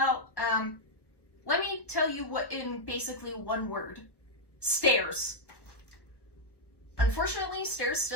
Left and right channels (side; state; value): right; late; 1.3 ms